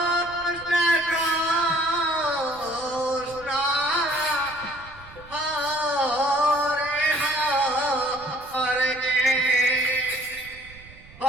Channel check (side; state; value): right; noise; rumble, 21 dB below the sound